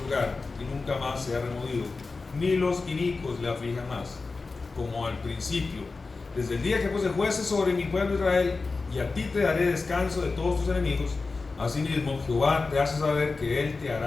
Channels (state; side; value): quieter; right; 4.0 dB